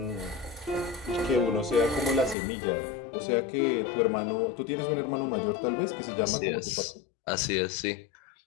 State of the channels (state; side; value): drops out; right; at 2.4 s